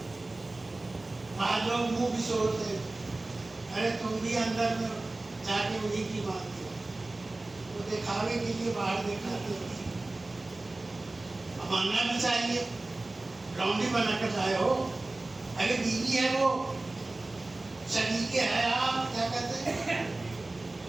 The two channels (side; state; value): left; quieter; 3.0 dB